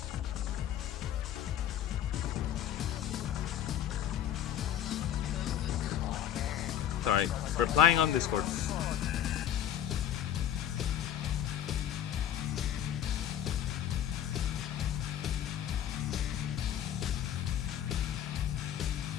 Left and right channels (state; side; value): quieter; right; 10.4 dB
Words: Sorry, replying on Discord.